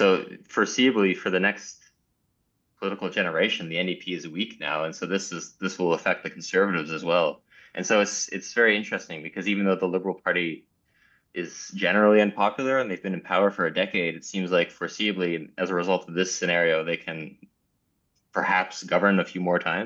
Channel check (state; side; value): identical; both; correlation 1.00